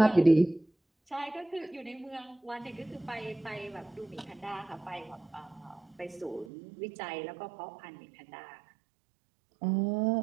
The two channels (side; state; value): left; drops out; at 6.5 s